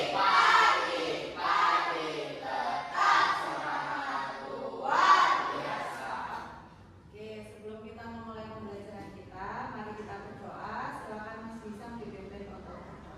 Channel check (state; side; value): identical; both; correlation 1.00